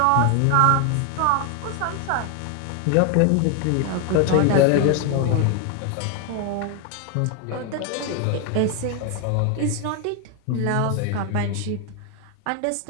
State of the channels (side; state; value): both; different; correlation 0.01